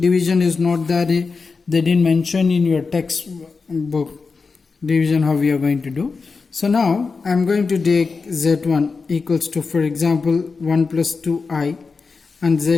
Division is not there, they didn't mention in your textbook division how we are going to do. So now I am going to take z1 equals to, for example, 1 plus 2i, and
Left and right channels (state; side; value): quieter; right; 4.6 dB